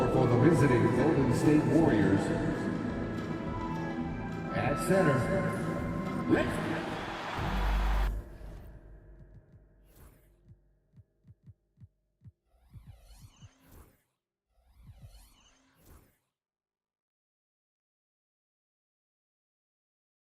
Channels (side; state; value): both; identical; correlation 1.00